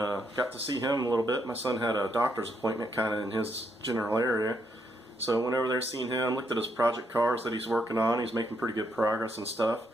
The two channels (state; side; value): normal; both; correlation 0.76